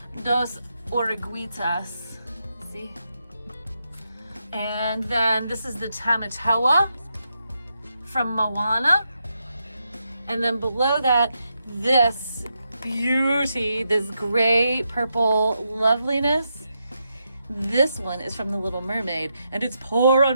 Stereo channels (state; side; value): inverted; both; correlation -0.84